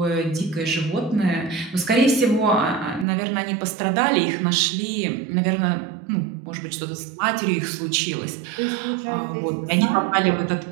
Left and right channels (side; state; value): left; drops out; at 3.1 s